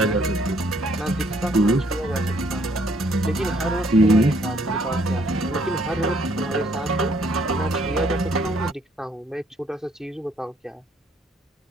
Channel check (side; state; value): both; normal; correlation 0.66